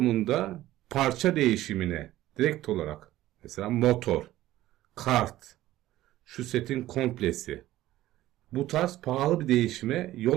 parça değişimine direkt olarak mesela motor, kart, şu setin komplesi bu tarz pahalı bir değişime yol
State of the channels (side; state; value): left; quieter; 15.1 dB